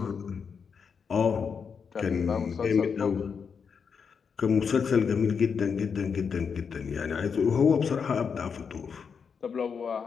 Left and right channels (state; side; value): quieter; right; 6.2 dB